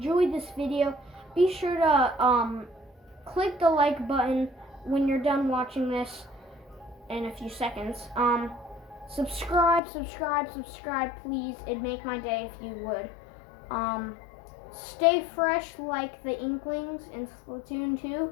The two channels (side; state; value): right; drops out; at 9.8 s